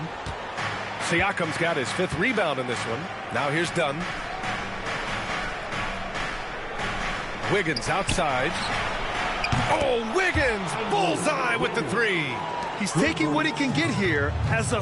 Siakam's got his 5th rebound in this one. Now here's Dunn. Wiggins outside. Oh, Wiggins! Bullseye with the 3. He's taking what he can get here as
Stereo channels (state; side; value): identical; both; correlation 1.00